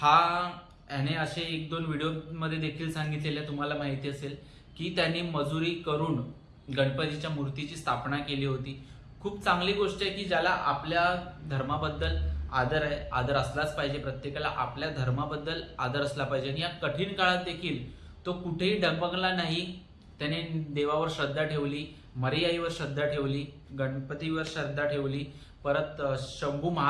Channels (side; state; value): both; identical; correlation 1.00